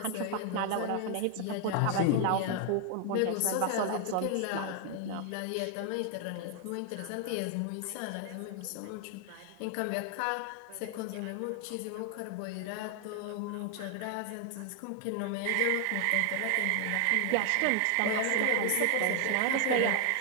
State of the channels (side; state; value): both; different; correlation 0.00